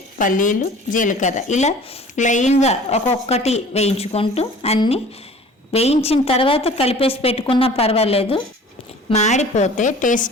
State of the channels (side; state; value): both; normal; correlation 0.46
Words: పల్లీలు, జీలకర్ర ఇలా లైన్గా ఒక్కొక్కటి వేయించుకుంటూ అన్నీ వేయించిన తర్వాత కలిపేసి పెట్టుకున్నా పర్వాలేదు, మాడిపోతే